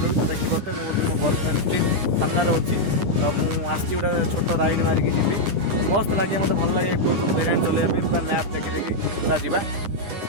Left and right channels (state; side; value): late; left; 9.9 ms